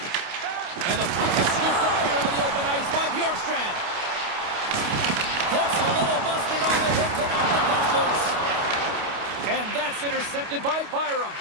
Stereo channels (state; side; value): late; left; 29 ms